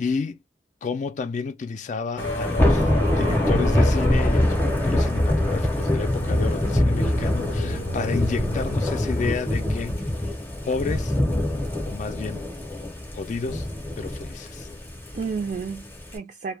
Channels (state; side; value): normal; both; correlation 0.84